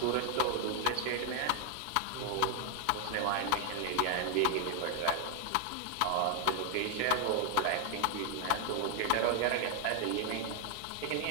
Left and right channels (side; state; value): both; different; correlation 0.00